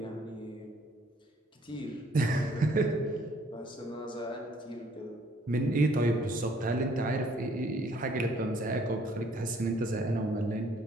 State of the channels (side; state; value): both; normal; correlation 0.62